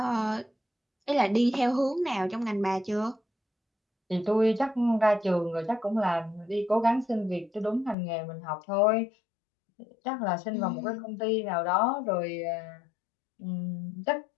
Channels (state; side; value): drops out; right; at 8.0 s